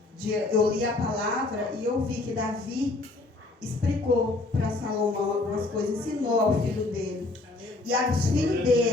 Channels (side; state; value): right; quieter; 3.1 dB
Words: Eu li a palavra e eu vi que Davi explicou para Salomão algumas coisas, ensinou ao filho dele. E aos filhos